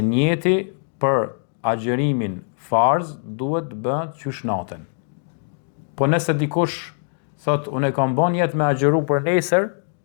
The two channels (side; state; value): right; silent; digital silence